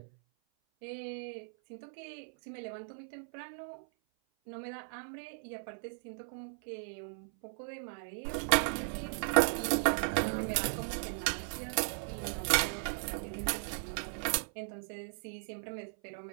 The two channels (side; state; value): left; silent; 53 dB below the other